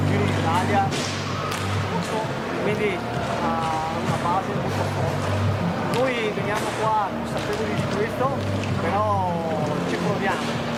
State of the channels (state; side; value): identical; both; correlation 1.00